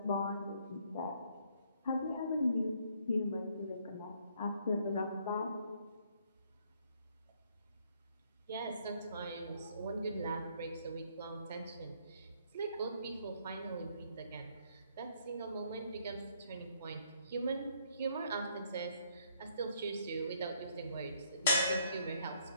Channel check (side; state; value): both; inverted; correlation -0.67